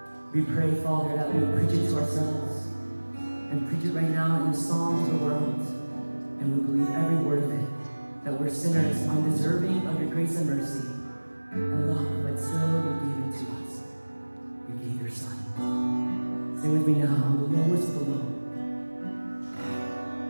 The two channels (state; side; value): inverted; both; correlation -1.00